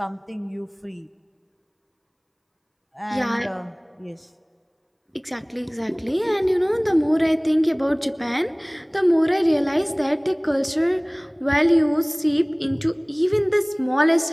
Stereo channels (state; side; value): identical; both; correlation 1.00